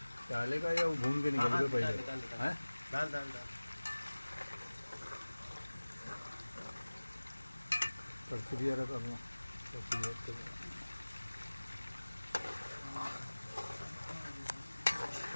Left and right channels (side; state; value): both; inverted; correlation -1.00